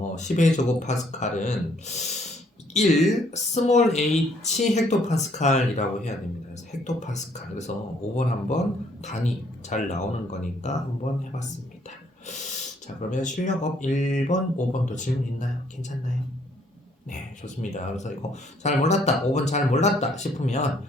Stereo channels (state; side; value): normal; both; correlation 0.65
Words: 10의 제곱파스칼은 1 스몰 h 헥토파스칼이라고 해야 됩니다. 그래서 헥토파스칼. 그래서 5번 한번 단위 잘 나오는 거니까 한번 해봤습니다. 자, 그러면 실력업 1번, 5번도 질문 있나요? 괜찮나요? 네, 좋습니다. 그래서 이거 잘 몰랐다, 5번 잘 몰랐다 싶으면